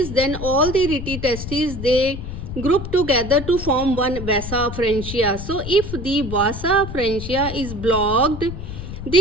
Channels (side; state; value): left; noise; rumble, 8 dB below the sound